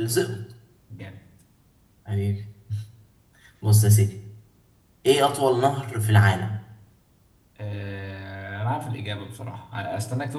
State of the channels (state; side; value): identical; both; correlation 1.00